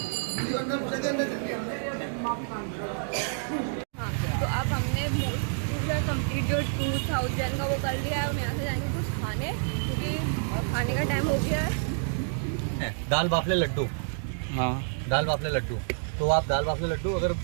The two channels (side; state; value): left; silent; digital silence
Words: हाँ तो अब हमने पूरा कंप्लीट जो 2000 का वो कर लिया है। हम यहाँ से जाएंगे कुछ खाने, क्योंकि खाने का टाइम हो गया है। दाल बाफले लड्डू, हाँ दाल बाफले लड्डू, तो आप दाल बाफले लड्डू अगर